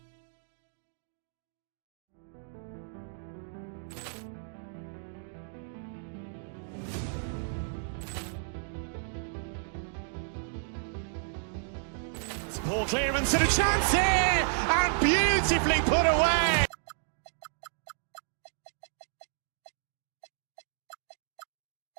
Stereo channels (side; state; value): left; silent; digital silence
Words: Ball clearance and a chance here, and beautifully put away.